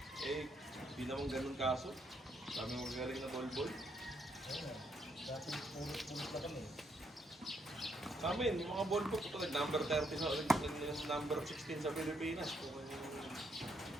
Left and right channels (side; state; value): both; normal; correlation 0.74